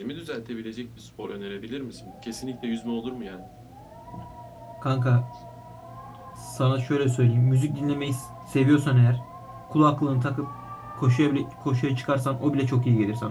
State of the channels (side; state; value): both; identical; correlation 1.00